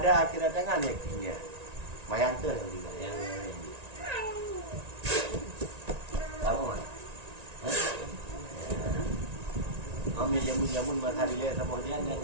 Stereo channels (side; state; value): left; late; 1.9 ms